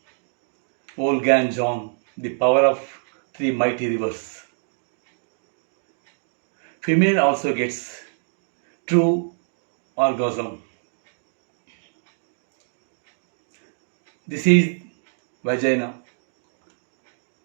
Volga and John. The power of three mighty rivers. Female also gets true orgasm. This is vagina.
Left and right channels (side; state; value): left; silent; digital silence